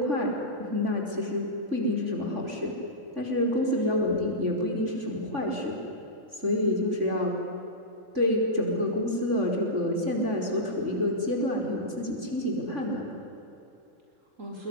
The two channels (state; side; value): late; left; 3.5 ms